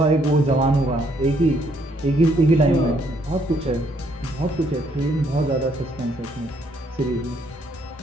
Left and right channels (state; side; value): normal; both; correlation 0.69